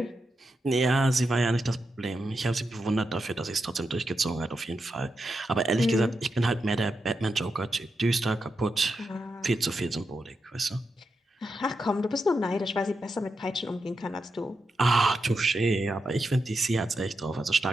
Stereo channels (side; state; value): both; normal; correlation 0.86